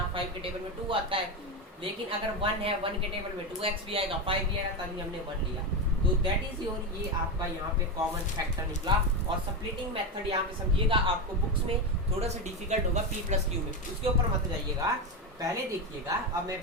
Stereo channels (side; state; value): both; normal; correlation 0.14